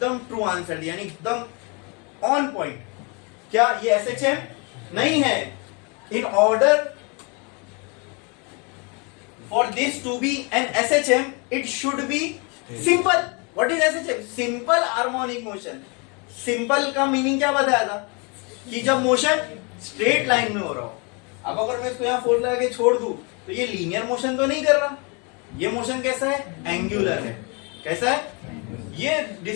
ट्रू आंसर दिया, यानी एकदम ऑन पॉइंट। क्या ये एसएचएम नहीं है? In order for this to be an SHM, it should be simple. What is SHM? Simple harmonic motion. Simple का मीनिंग क्या बताया था? कि जब मोशन स्ट्रेट लाइन में हो रहा हो। अब अगर मैं इसको यहाँ फोर्स लगा के छोड़ दूं तो ये लीनियर मोशन तो नहीं कर रहा। ये मोशन कैसा है? एंगुलर है। कैसा है? ये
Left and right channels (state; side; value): quieter; right; 32.0 dB